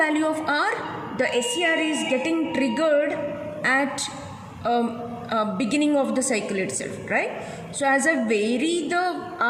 of R, the SCR is getting triggered at beginning of the cycle itself, right? So as I vary the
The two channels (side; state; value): both; identical; correlation 1.00